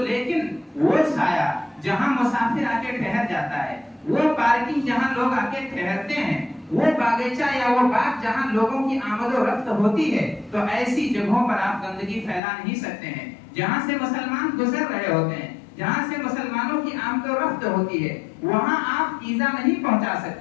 لیکن وہ سایہ جہاں مسافر آ کے ٹھہر جاتا ہے، وہ پارکنگ جہاں لوگ آ کے ٹھہرتے ہیں، وہ باغیچہ یا وہ باغ جہاں لوگوں کی آمد و رفت ہوتی ہے، تو ایسی جگہوں پر آپ گندگی پھیلا نہیں سکتے ہیں۔ جہاں سے مسلمان گزر رہے ہوتے ہیں، جہاں سے مسلمانوں کی آمد و رفت ہوتی ہے، وہاں آپ ایذا نہیں پہنچا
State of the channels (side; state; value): right; drops out; at 12.4 s